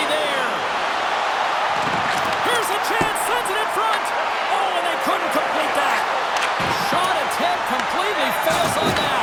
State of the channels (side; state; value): both; identical; correlation 1.00